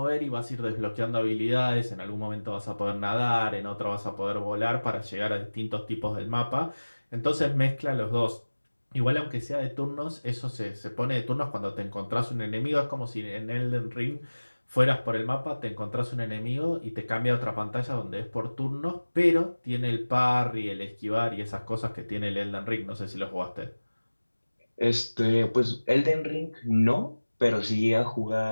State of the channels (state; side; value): inverted; both; correlation -1.00